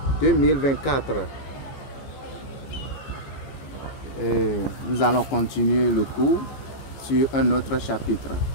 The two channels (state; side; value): late; right; 14 ms